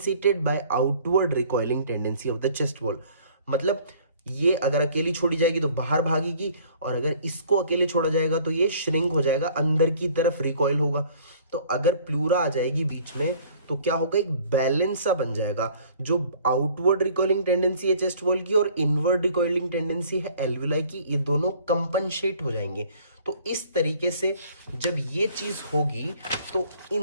by outward recoiling tendency of the chest wall. मतलब ये अगर अकेली छोड़ी जाएगी तो बाहर भागेगी और अगर इसको अकेले छोड़ा जाएगा तो ये श्रिंक हो जाएगा, अंदर की तरफ रिकॉइल होगा। तो अगर प्लूरा आ जाएगी बीच में तो क्या होगा, एक बैलेंस सा बन जाएगा। जो आउटवर्ड रिकॉइलिंग टेंडेंसी है चेस्ट वॉल की और इनवर्ड रिकॉइलिंग टेंडेंसी है एल्वेओलाई की, ये दोनों कंपनसेट हो जाएंगे। तो इस तरीके से जब ये चीज होगी तो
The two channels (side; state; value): both; inverted; correlation -0.54